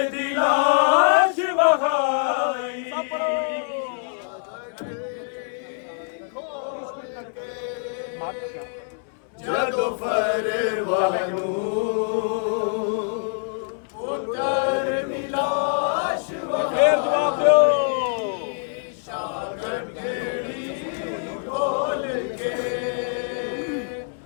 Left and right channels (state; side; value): silent; right; 62 dB below the other